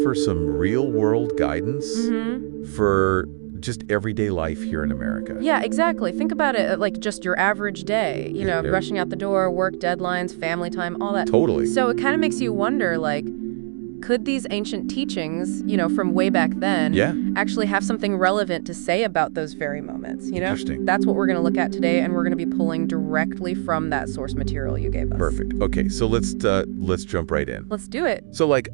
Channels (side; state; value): left; silent; digital silence